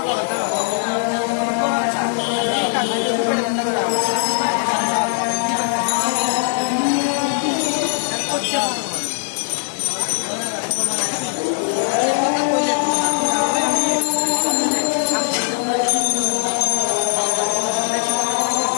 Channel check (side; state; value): right; silent; 66 dB below the other